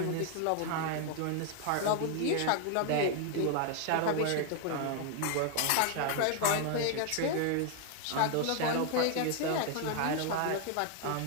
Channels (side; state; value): both; different; correlation 0.00